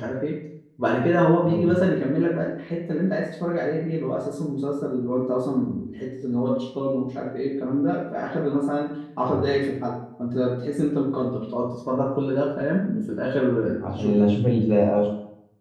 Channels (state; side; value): identical; both; correlation 1.00